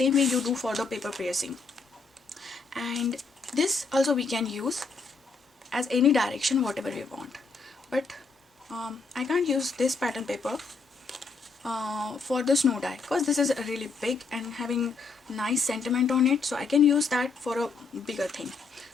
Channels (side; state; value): right; quieter; 4.3 dB